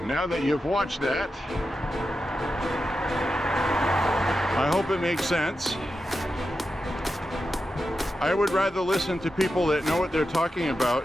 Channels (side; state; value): both; normal; correlation 0.90